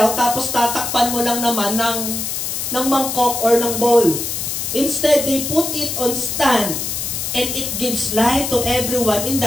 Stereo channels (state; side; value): noise; left; hiss, 3 dB below the sound